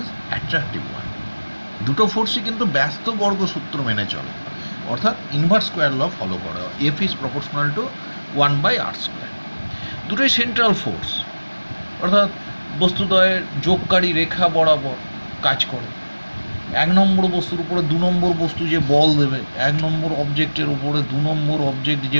attractive one. দুটো ফোর্সই কিন্তু ব্যস্ত বর্গ সূত্র মেনে চলে, অর্থাৎ ইনভার্স স্কোয়ার ল ফলো করে, F is proportional to 1/r²। দুটোই সেন্ট্রাল ফোর্স, অর্থাৎ বস্তুদ্বয়ের যোগকারী রেখা বরাবর কাজ করে। এক নম্বর বস্তুর উপরে দু নম্বর বস্তু যে বল দেবে, এক নম্বর অবজেক্টের উপরে দু নম্বর অবজেক্ট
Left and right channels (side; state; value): both; inverted; correlation -1.00